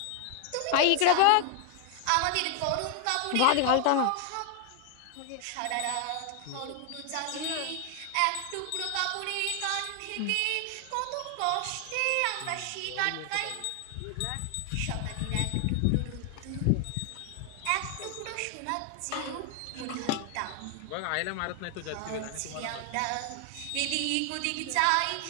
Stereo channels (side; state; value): both; different; correlation 0.00